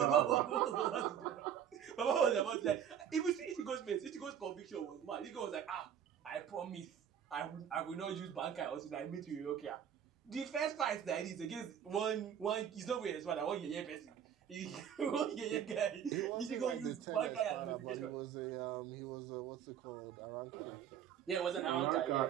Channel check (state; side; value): quieter; left; 9.0 dB